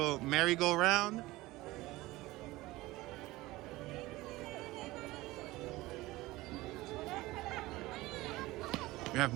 merry-go-round. We have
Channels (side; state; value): left; quieter; 19.1 dB